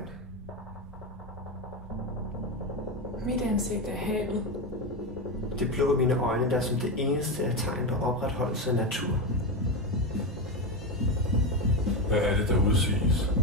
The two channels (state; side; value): normal; both; correlation 0.14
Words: Mit ansigt er havet. Det blå i mine øjne, der som det eneste er tegn på opretholdelse af natur. Hvad er det, der udsiges?